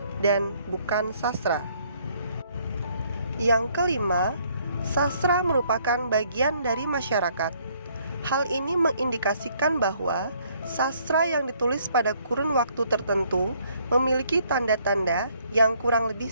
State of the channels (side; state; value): both; inverted; correlation -0.65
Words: dan bukan sastra. Yang kelima, sastra merupakan bagian dari masyarakat. Hal ini mengindikasikan bahwa sastra yang ditulis pada kurun waktu tertentu memiliki tanda-tanda yang kurang lebih